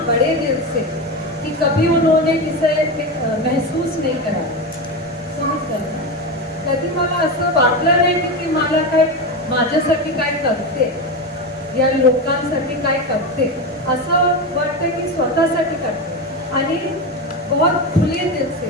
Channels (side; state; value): both; normal; correlation 0.18